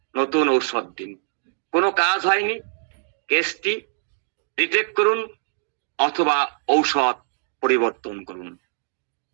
নতুন ঔষধ দিন। কোনো কাজ হয়নি, কেসটি রিটেক করুন অথবা ঔষধ পরিবর্তন করুন।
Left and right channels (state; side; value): silent; left; digital silence